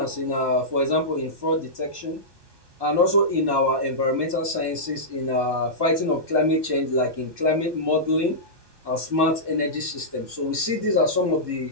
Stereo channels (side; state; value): left; late; 1.2 ms